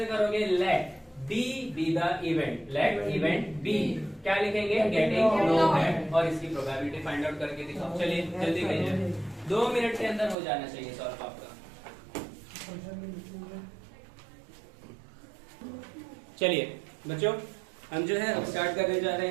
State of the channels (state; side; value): drops out; left; at 10.4 s